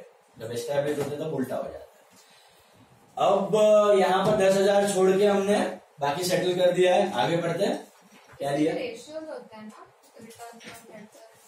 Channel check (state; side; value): identical; both; correlation 1.00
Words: जब एस्टैब्लिश होते हैं तब उल्टा हो जाता है. अब यहाँ पर 10,000 छोड़ के हमने बाकी सेटल कर दिया है. आगे बढ़ते हैं. क्या लिया? रेशियोज होता है ना,